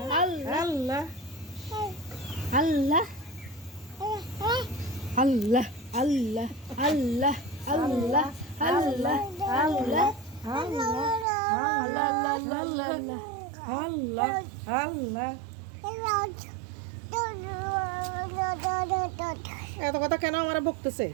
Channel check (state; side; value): drops out; left; at 11.2 s